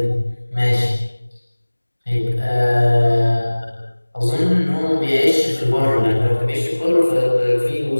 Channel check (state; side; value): inverted; both; correlation -1.00